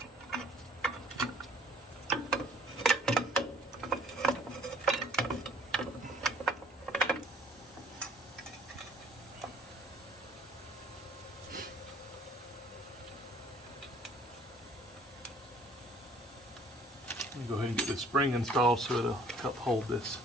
Go ahead and get this spring installed so it'll help hold this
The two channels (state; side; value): normal; both; correlation 0.56